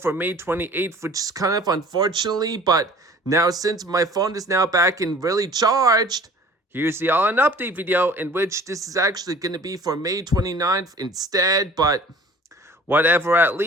May 28th, which is kind of unfortunately, but now since my phone is now back and really charged, here's the all-in update video, in which this is actually going to be for May 29th instead, but whatever at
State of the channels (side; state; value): both; normal; correlation 0.48